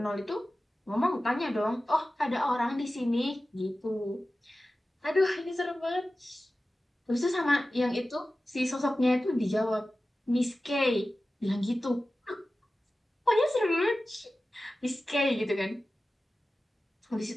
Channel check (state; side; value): normal; both; correlation 0.95